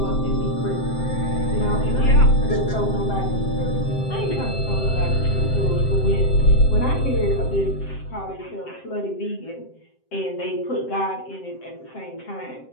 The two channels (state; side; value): late; right; 7.6 ms